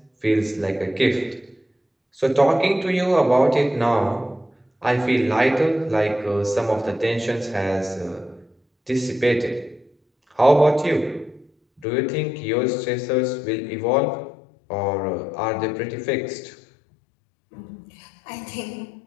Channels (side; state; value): right; drops out; at 11.9 s